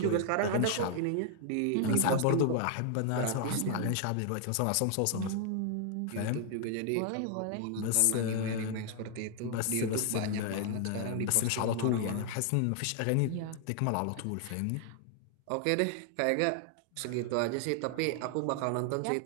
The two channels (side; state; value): both; different; correlation 0.00